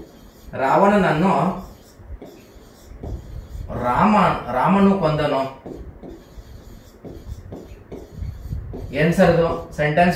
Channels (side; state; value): both; identical; correlation 1.00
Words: ರಾಮನು ಕೊಂದನು. ಏನ್ ಸರ್ ಇದು